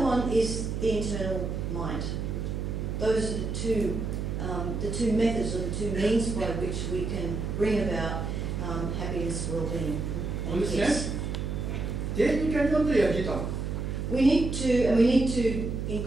one is the internal mind. Those are the two methods or the two means by which we can bring about happiness, well-being, and peace. We need to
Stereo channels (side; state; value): right; noise; hum, 3 dB below the sound